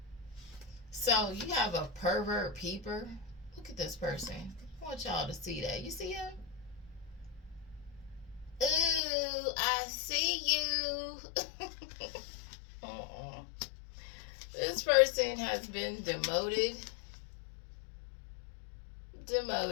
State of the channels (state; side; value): drops out; right; at 9.0 s